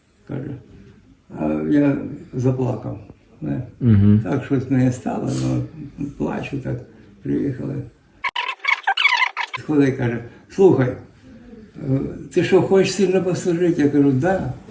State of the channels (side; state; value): both; identical; correlation 1.00